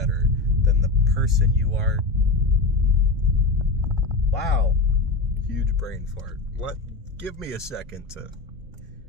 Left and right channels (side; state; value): right; quieter; 3.5 dB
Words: than the person you are? Wow. Huge brain fart. Give me a second to